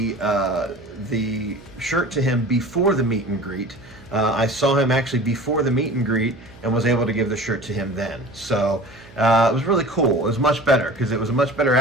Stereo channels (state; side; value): noise; right; hum, 22 dB below the sound